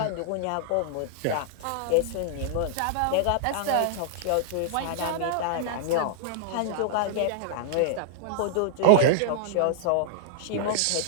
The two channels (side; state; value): both; different; correlation -0.01